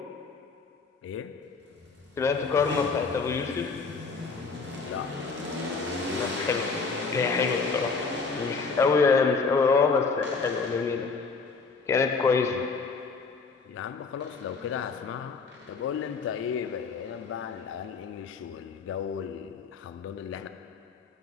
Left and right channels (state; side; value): quieter; right; 4.6 dB